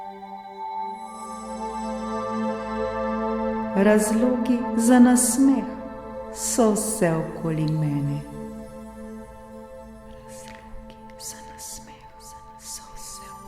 Razlogi za nasmeh so vse okoli mene.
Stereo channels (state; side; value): identical; both; correlation 1.00